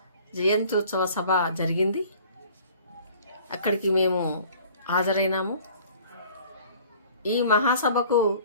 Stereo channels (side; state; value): both; inverted; correlation -0.50